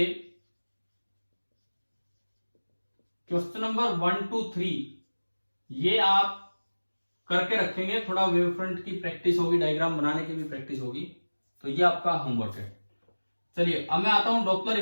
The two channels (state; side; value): inverted; both; correlation -1.00